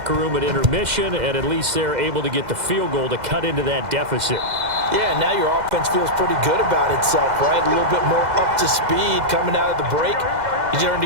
room at intermission, and at least they're able to get the field goal to cut into that deficit. Yeah, now your offense feels pretty good about itself, right? A little bit more up to speed coming out of the break. You turn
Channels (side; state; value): left; late; 2.0 ms